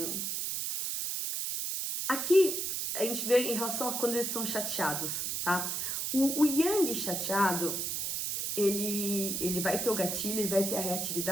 Aqui a gente vê em relação a quando eles estão chateados, tá? O yang chateado, ele vai ter o gatilho, ele vai ter a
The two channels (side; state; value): right; noise; hiss, 1 dB below the sound